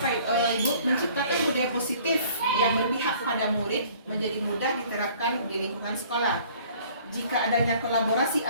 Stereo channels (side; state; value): both; inverted; correlation -0.54